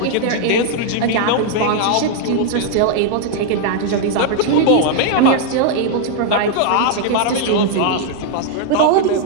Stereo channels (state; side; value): different; both; correlation 0.00